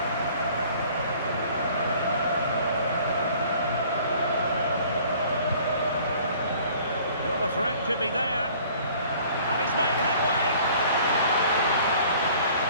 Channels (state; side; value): inverted; both; correlation -0.53